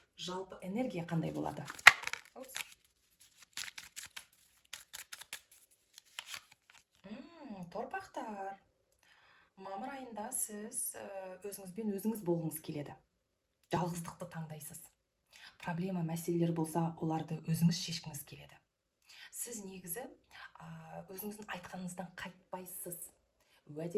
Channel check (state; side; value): identical; both; correlation 1.00